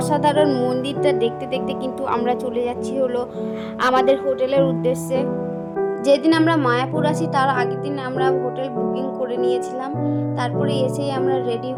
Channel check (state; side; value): identical; both; correlation 1.00